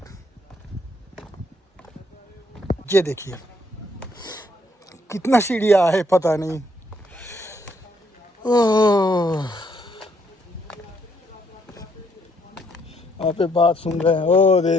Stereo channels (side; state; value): both; normal; correlation 0.70